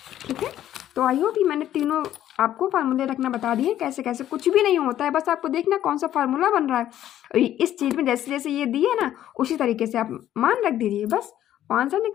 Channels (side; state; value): right; quieter; 12.0 dB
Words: ठीक है। तो आई होप कि मैंने तीनों आपको फार्मूले रखना बता दिए, कैसे कैसे, कुछ भी नहीं होता है, बस आपको देखना कौन सा फार्मूला बन रहा है, इस चीज़ में जैसे जैसे ये दिए ना उसी तरीके से आप मान रख दीजिए, बस आंसर